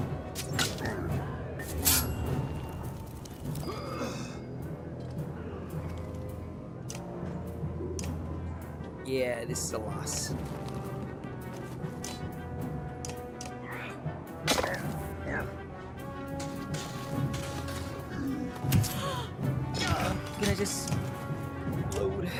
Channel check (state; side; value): identical; both; correlation 1.00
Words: Yeah, this is a loss. Can I just load?